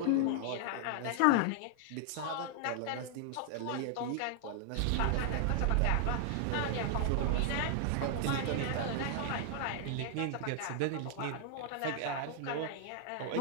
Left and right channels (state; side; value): different; both; correlation 0.00